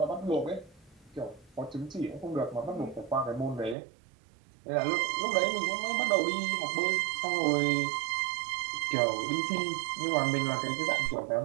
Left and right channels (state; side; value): drops out; left; at 3.8 s